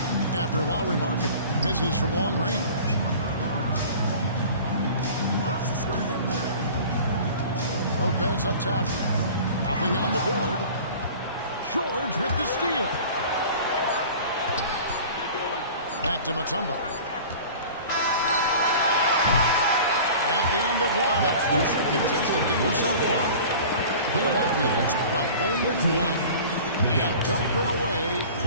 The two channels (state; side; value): inverted; both; correlation -0.41